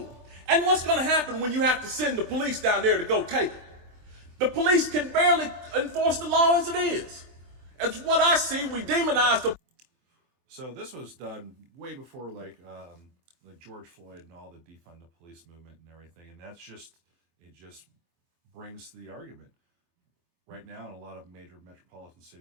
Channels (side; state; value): left; late; 24 ms